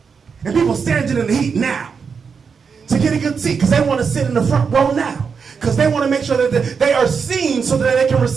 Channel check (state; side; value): quieter; left; 5.9 dB